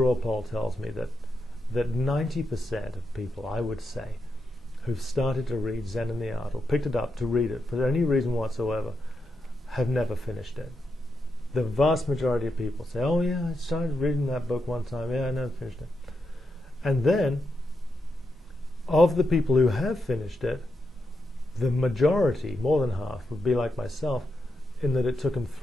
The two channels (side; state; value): both; normal; correlation 0.85